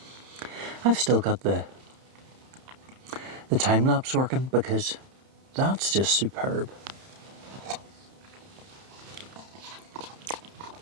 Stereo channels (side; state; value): left; late; 31 ms